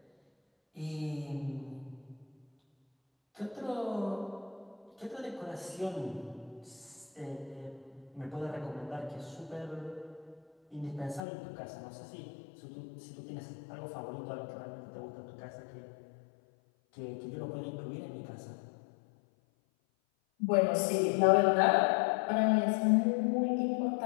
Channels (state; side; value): drops out; right; at 11.2 s